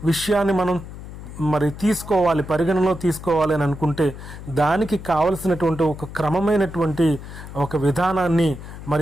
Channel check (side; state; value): left; noise; hum, 12 dB below the sound